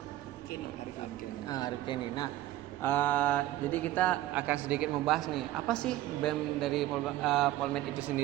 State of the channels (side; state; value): left; quieter; 14.8 dB